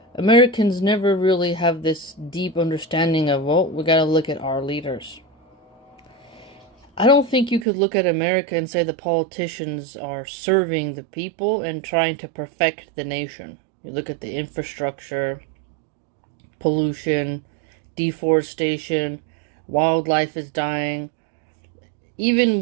Americans never really have this deep understanding of, well, we gotta look at our leaders. I don't think you could look at America and say the politicians are serving the people and trying to perfect the nation. You look at the infrastructure, pollution, deforestation, wildlife is dying.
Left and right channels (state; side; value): drops out; left; at 7.7 s